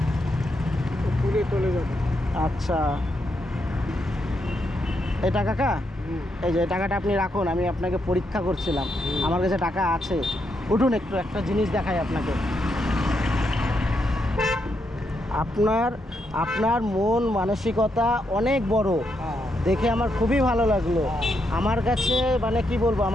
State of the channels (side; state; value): both; normal; correlation 0.80